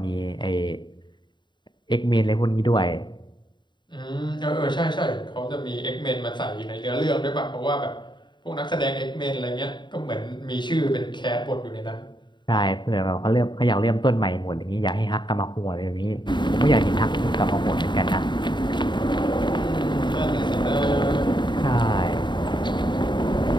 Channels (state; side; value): late; right; 0.22 ms